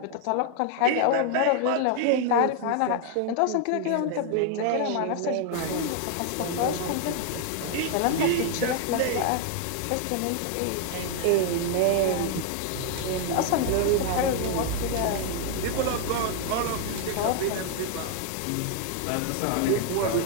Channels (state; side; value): different; both; correlation 0.00